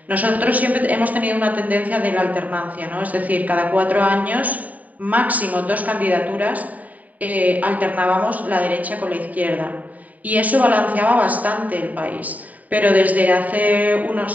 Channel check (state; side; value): late; left; 0.074 ms